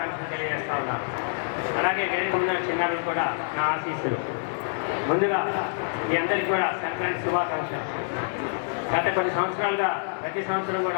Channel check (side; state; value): right; silent; 60 dB below the other